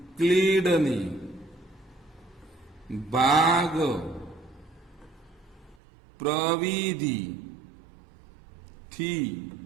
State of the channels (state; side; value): drops out; left; at 5.8 s